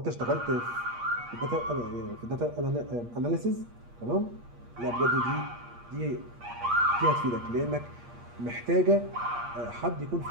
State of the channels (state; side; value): late; left; 8.5 ms